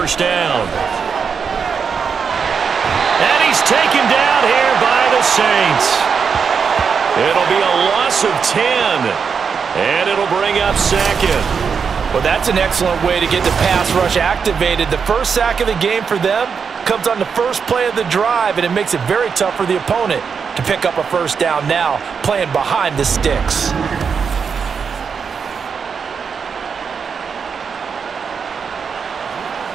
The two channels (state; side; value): quieter; left; 6.1 dB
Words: down. And he's taken down here by the Saints. It'll be a loss of 10. And it'll bring up 2nd. Well, that's an excellent way to get the pass rush activated. The first sack of the game for them comes on the first play of the drive, and it makes it very tough for the opponent to pick up a 1st down now, playing behind the sticks.